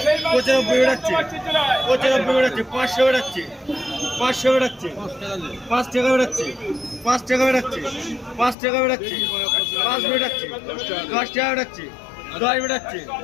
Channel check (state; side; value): drops out; right; at 8.6 s